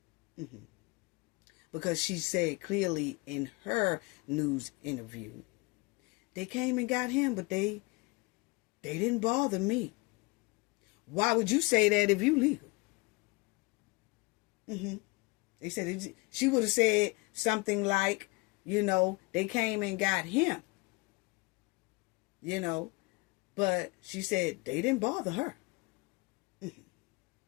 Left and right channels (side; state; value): right; quieter; 26.0 dB